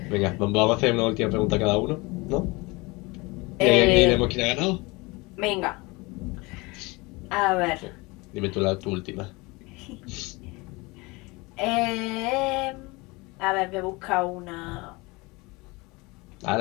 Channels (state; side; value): quieter; right; 24.7 dB